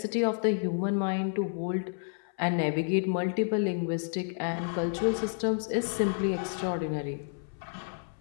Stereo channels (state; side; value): silent; right; 58 dB below the other